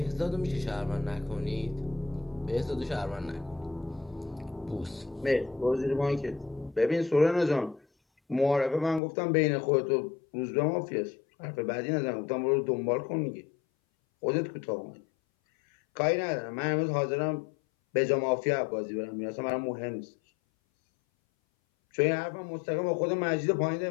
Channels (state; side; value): drops out; right; at 9.0 s